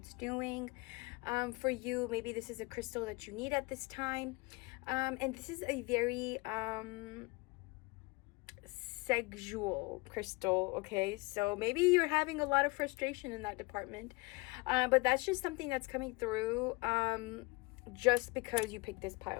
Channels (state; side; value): quieter; right; 25.9 dB